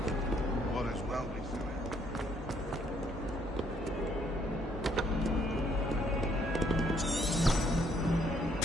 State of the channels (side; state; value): both; normal; correlation 0.68